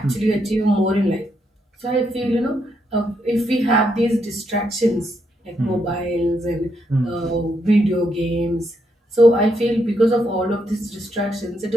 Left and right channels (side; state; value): both; normal; correlation 0.78